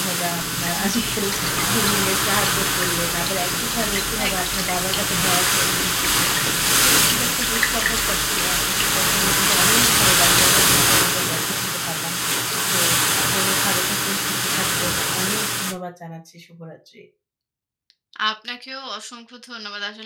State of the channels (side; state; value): both; identical; correlation 1.00